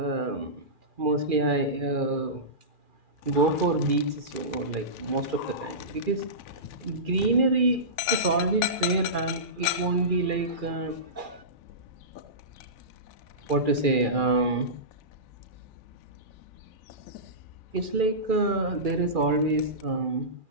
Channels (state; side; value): late; left; 2.4 ms